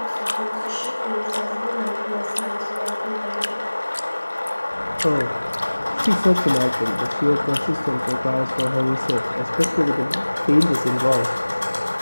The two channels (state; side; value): inverted; both; correlation -1.00